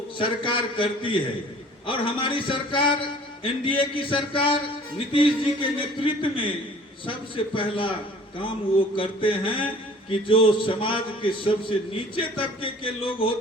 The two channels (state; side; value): normal; both; correlation 0.50